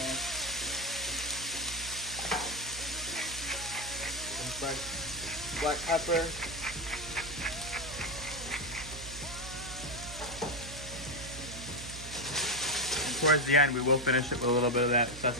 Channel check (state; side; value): noise; right; hum, 12 dB below the sound